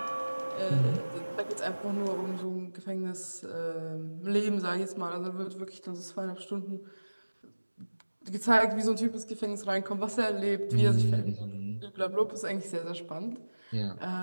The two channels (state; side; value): inverted; both; correlation -1.00